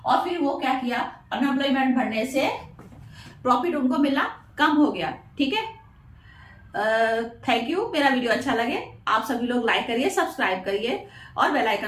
और फिर वो क्या किया, अनएम्प्लॉयमेंट बढ़ने से प्रॉफिट उनको मिलना कम हो गया, ठीक है। Thank you. मेरा वीडियो अच्छा लगे आप सभी लोग लाइक करिए, सब्सक्राइब करिए, और बेल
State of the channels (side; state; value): both; identical; correlation 1.00